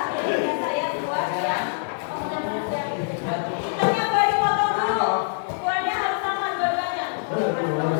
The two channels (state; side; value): silent; right; 62 dB below the other